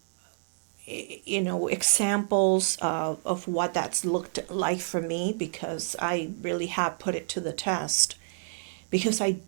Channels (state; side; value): silent; left; digital silence